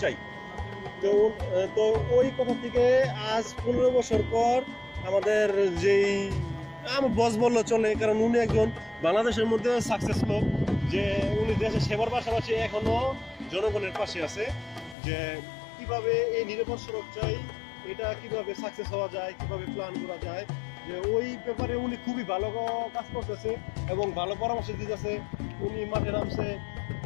চাই। তো ওই কথা থেকে আজ 15 বছর পর আমাদের যেই আমার বস বললো চলে, কারণ উনি একজন বাংলাদেশের মধ্যে সাকসেস লোক, যে উনি দেশের সেবার পাশাপাশি এখনো জনগণের পাশে আছে। যে কিভাবে এই নিরাপদ সড়ক চাই, এটা কিভাবে সাকসেস হওয়া যায়, কিভাবে প্ল্যান করা যায়, যে ওই ব্যাপারে উনি খুবই ভালো কাজ করতেছে এবং ভালো পরামর্শ দিতেছে। উনি মাঠে নামছে,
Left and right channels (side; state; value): right; drops out; at 15.0 s